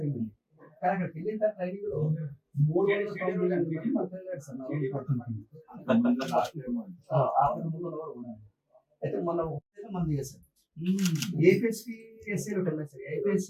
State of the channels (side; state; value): both; identical; correlation 1.00